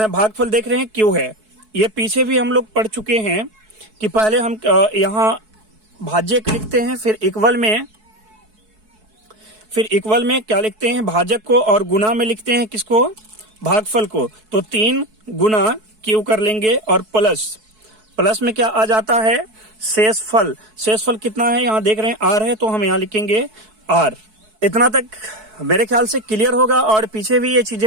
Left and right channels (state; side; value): late; left; 4.6 ms